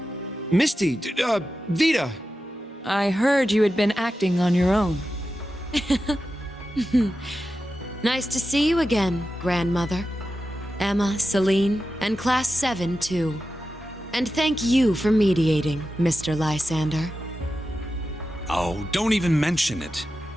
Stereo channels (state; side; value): normal; both; correlation 0.91